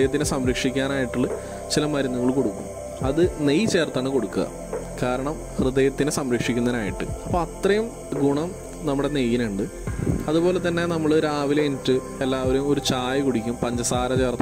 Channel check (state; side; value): identical; both; correlation 1.00